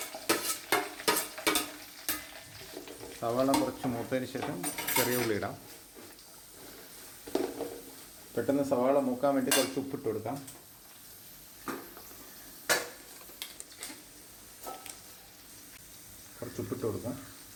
സവാള കുറച്ച് മൂത്തതിന് ശേഷം ചെറിയ ഉള്ളി ഇടാം. പെട്ടെന്ന് സവാള മൂക്കാൻ വേണ്ടി കുറച്ച് ഉപ്പിട്ട് കൊടുക്കാം. കുറച്ച് ഉപ്പിട്ട് കൊടുക്കാം.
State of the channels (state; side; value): identical; both; correlation 1.00